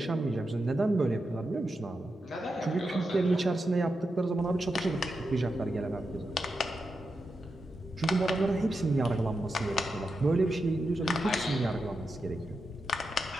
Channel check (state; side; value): normal; both; correlation 0.88